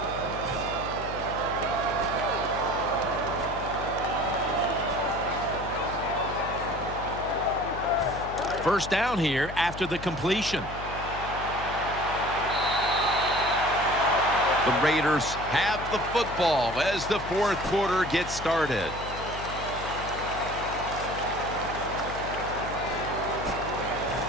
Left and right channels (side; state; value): left; noise; hum, 10 dB below the sound